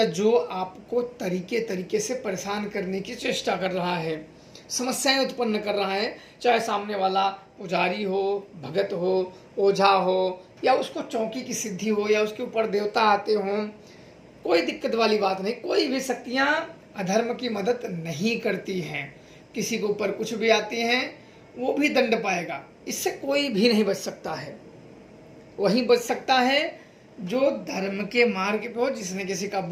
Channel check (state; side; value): identical; both; correlation 1.00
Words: जो आपको तरीके से परेशान करने की चेष्टा कर रहा है, समस्याएं उत्पन्न कर रहा है, चाहे सामने वाला पुजारी हो, भगत हो, ओझा हो, या उसको चौकी की सिद्धि हो, या उसके ऊपर देवता आते हों, कोई दिक्कत वाली बात नहीं। कोई भी शक्तियाँ अधर्म की मदद नहीं करती हैं। किसी के ऊपर कुछ भी आती हैं वो भी दंड पाएगा। इससे कोई भी नहीं बच सकता है। वही बच सकता है जो धर्म के मार्ग पे हो, जिसने किसी का